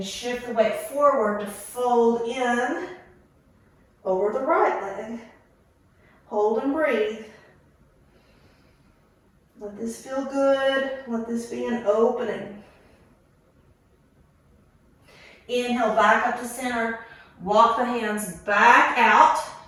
shift the weight forward to fold in over the right leg. Hold and breathe. Let this feel good. Let this be an opening. Inhale back up to center. Walk the hands back out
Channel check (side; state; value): both; identical; correlation 1.00